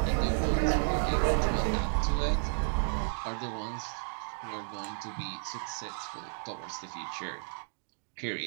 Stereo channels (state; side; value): silent; left; 56 dB below the other